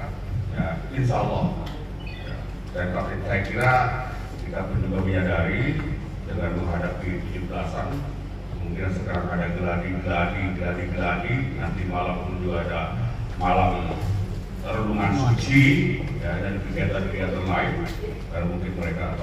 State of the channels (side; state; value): both; identical; correlation 1.00